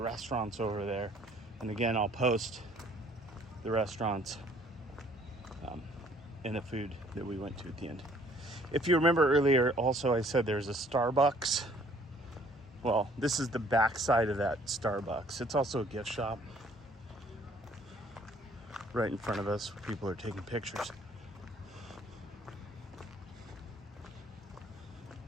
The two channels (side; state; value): both; normal; correlation 0.59